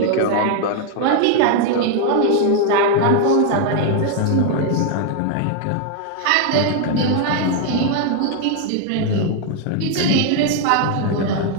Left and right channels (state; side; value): different; both; correlation 0.00